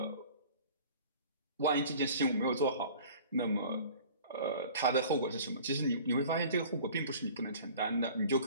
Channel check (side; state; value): both; inverted; correlation -0.45